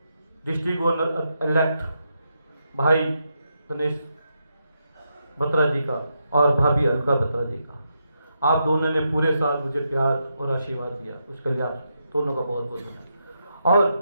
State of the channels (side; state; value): both; inverted; correlation -0.83